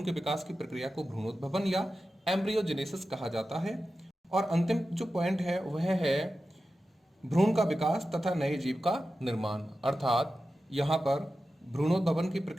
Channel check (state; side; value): normal; both; correlation 0.93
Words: के विकास की प्रक्रिया को भ्रूणोद्भवन या एम्ब्रियोजेनेसिस कहा जाता है। और अंतिम जो पॉइंट है वह है भ्रूण का विकास तथा नए जीव का निर्माण। अर्थात यहाँ पर भ्रूणोद्भवन की